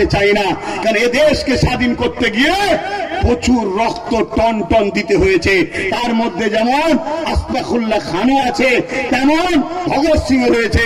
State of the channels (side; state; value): both; identical; correlation 1.00